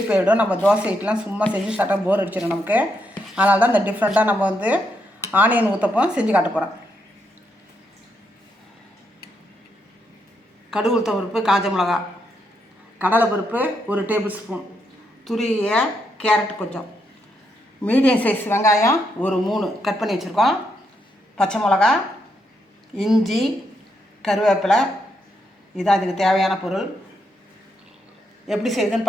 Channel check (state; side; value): normal; both; correlation 0.79